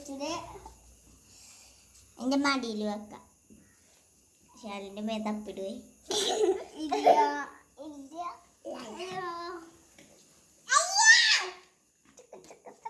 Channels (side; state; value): both; identical; correlation 1.00